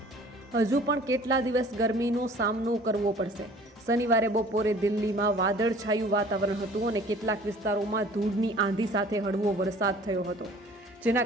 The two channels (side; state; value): both; normal; correlation 0.50